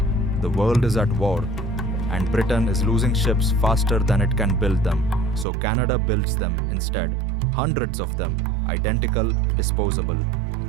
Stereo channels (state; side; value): drops out; left; at 5.5 s